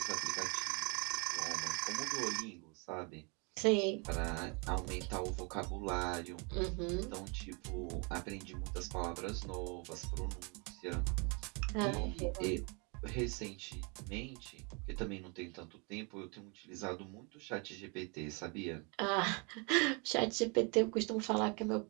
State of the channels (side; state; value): left; quieter; 32.7 dB